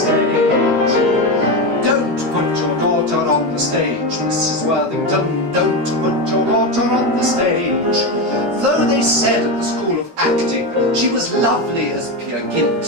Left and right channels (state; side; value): late; left; 13 ms